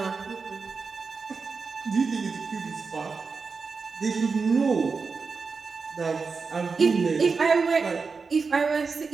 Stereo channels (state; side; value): quieter; left; 4.8 dB